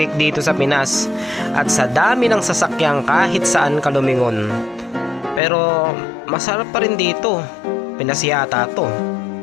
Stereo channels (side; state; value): right; drops out; at 5.4 s